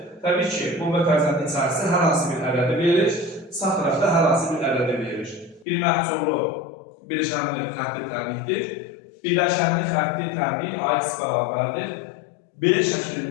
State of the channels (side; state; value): right; drops out; at 5.7 s